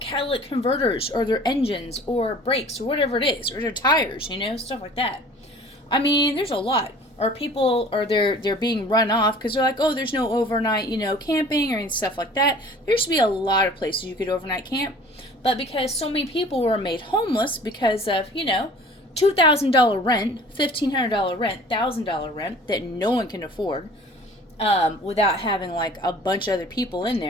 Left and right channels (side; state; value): both; normal; correlation 0.47